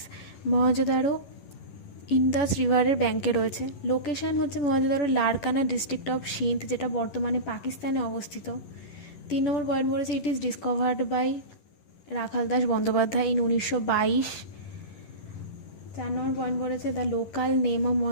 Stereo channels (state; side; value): late; right; 11 ms